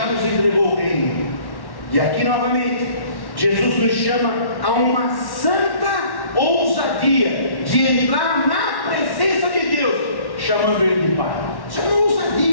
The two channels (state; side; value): late; right; 1.1 ms